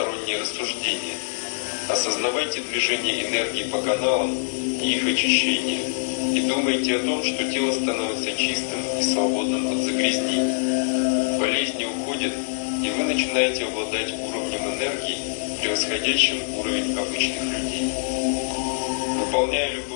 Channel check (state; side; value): silent; right; digital silence